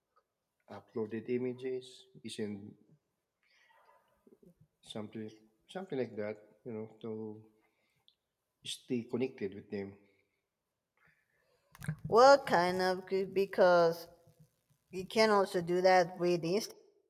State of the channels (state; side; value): identical; both; correlation 1.00